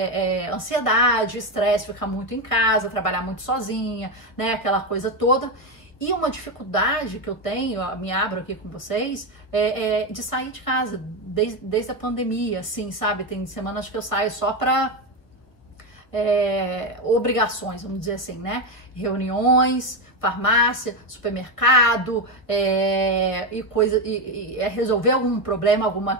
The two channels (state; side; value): late; right; 1.3 ms